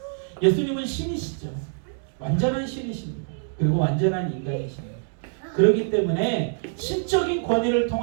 예수님은 신이시죠. 완전한 신이십니다. 그리고 완전한 인간이십니다. 그렇기 때문에 신적인 권위를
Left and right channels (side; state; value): left; silent; digital silence